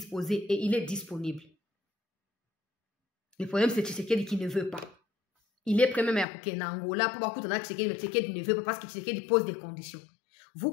et il est disponible. Le problème, c'est Tshisekedi qui ne veut pas. Il est prêt même à couper en Angola pour voir Tshisekedi, mais Tshisekedi ne veut pas parce que Tshisekedi pose des conditions. Vous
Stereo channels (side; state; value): right; drops out; at 6.2 s